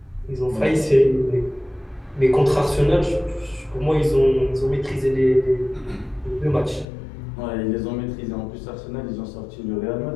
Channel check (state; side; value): drops out; right; at 6.9 s